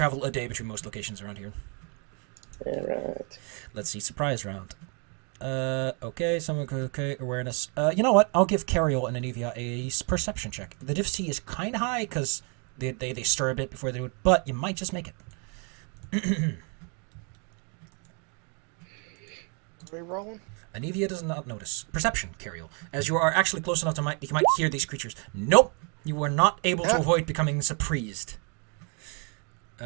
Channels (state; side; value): quieter; left; 36.6 dB